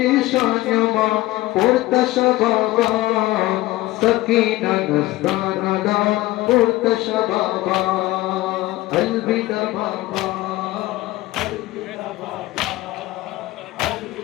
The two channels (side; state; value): right; quieter; 18.1 dB